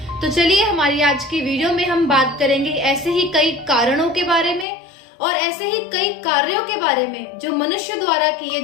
तो चलिए हमारी आज की वीडियो में हम बात करेंगे ऐसे ही कई कारणों के बारे में और ऐसे ही कई कार्यों के बारे में जो मनुष्य द्वारा किए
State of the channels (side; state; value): right; drops out; at 4.7 s